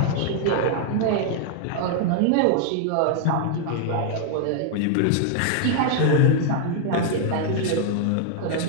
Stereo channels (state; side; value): different; both; correlation 0.00